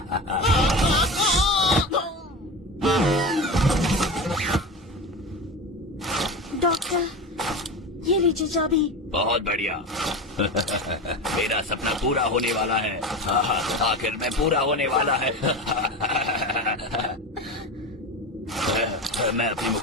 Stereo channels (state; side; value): normal; both; correlation 0.26